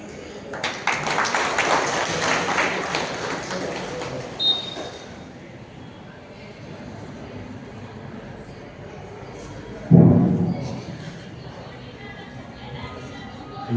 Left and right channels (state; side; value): identical; both; correlation 1.00